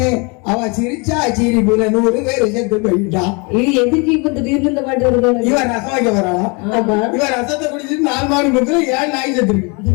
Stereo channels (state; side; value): quieter; right; 30.7 dB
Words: அவ சிரிச்சா சிரிப்புல 100 பேர் செத்து போயிட்டா. இது எதுக்கு இப்ப திடீர்னு இந்த பாட்டு வருது? இவன் ரசம் வைக்க வராளா? இவன் ரசத்தை குடிச்சிட்டு 4 மாடு முக்கிற 7 நாய் செத்து இருக்கு.